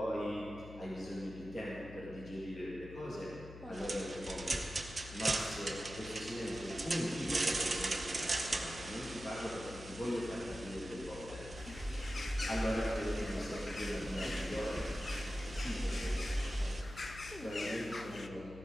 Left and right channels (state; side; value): noise; left; hum, 14 dB below the sound